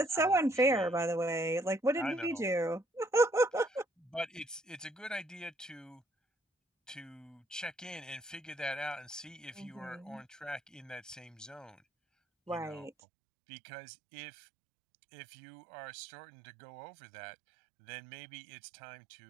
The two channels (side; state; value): left; drops out; at 12.9 s